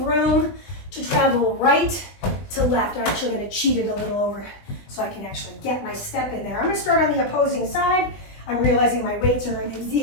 room to travel right to left. I'm actually gonna cheat it a little over so I can actually get my step in there. I'm gonna start on the opposing side. I'm realizing my weights are in the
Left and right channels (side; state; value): right; late; 20 ms